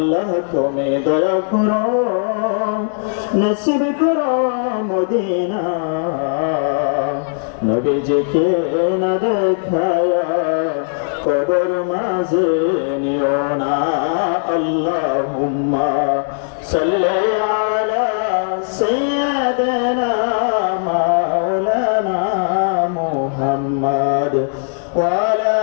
তুমি দয়া করো নসিব করো মদিনা নবীজিকে না দেখায়া কবর মাঝে নিও না আল্লাহুম্মা সাল্লি আলা সাইয়্যিদিনা মাওলানা মুহাম্মদ ওয়া আলা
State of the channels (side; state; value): right; silent; digital silence